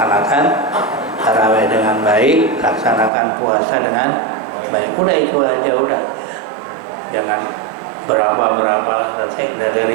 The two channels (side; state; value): left; drops out; at 3.1 s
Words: tarawih dengan baik, laksanakan puasa dengan baik. Udah itu aja udah. Jangan berapa-berapa nanti